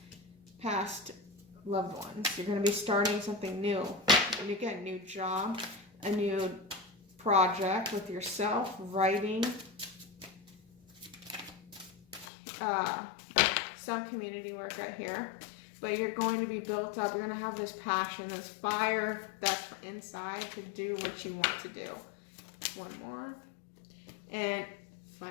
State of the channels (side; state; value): right; drops out; at 12.2 s